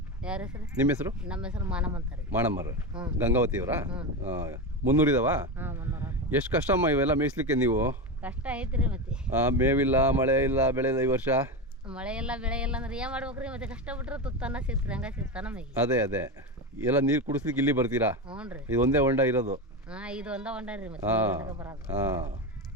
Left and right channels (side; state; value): both; normal; correlation 0.18